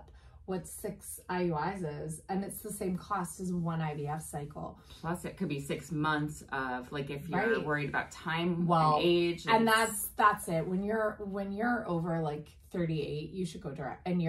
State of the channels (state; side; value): identical; both; correlation 1.00